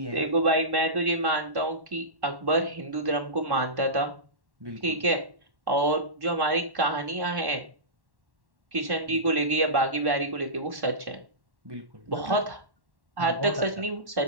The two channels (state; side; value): late; left; 1.1 ms